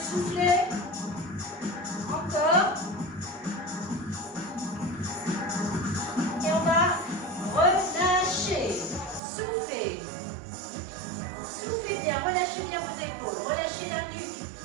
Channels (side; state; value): left; drops out; at 9.2 s